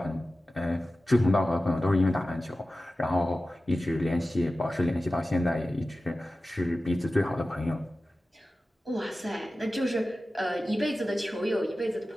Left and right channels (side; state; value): both; normal; correlation 0.95